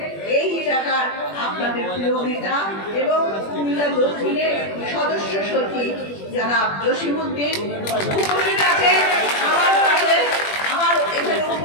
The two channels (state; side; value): late; right; 21 ms